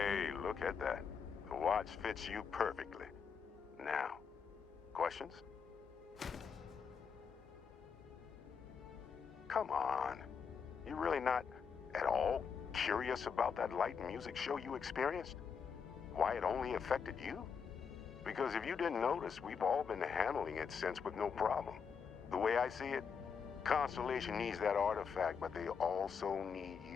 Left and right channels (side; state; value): right; quieter; 6.3 dB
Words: look at that. The watch fits you perfectly. Now, questions? Come on. You really not at all curious about that light and music show you experienced? Why it only affected you? Because if you didn't notice, we've all been handling it since with no problem. The way I see it, Constellation needs that artifact, but they also need